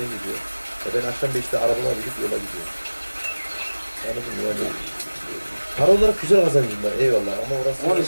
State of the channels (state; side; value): inverted; both; correlation -1.00